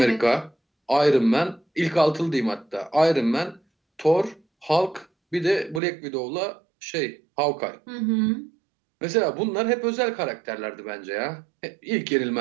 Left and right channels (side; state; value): left; drops out; at 5.8 s